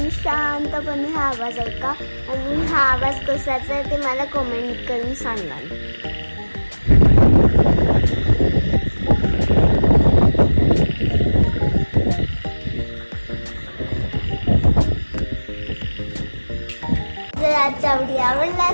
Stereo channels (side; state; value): both; inverted; correlation -1.00